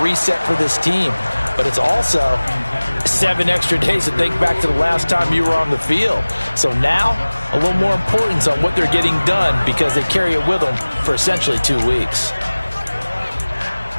reset for this team. But it's also 7 extra days to think back to the last time you were on the field. So now, a little more importance on what they're getting done, because they carry it with them for essentially 2 weeks.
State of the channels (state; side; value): inverted; both; correlation -1.00